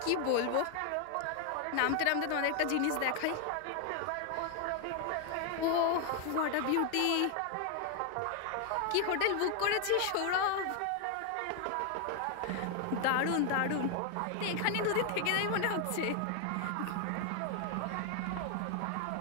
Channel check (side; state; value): both; different; correlation 0.00